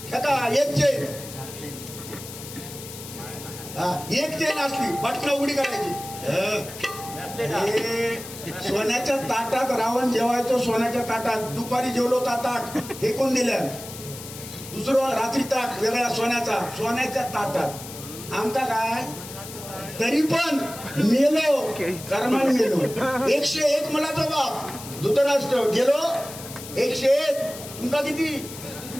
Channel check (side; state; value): left; noise; hiss, 13 dB below the sound